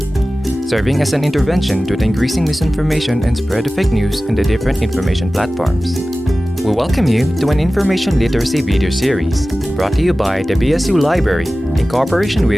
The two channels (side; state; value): both; normal; correlation 0.96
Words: serving as an intervention to the increasing misinformation and spread of fake news on the different information platforms. We welcome you to an information literacy video series brought to you by the BSU Library in cooperation